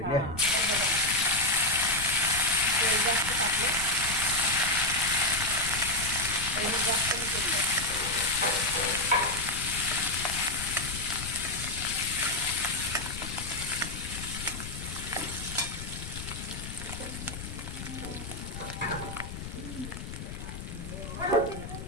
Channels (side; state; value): left; noise; rumble, 9 dB below the sound